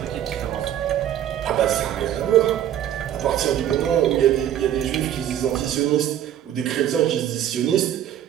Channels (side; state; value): left; quieter; 11.0 dB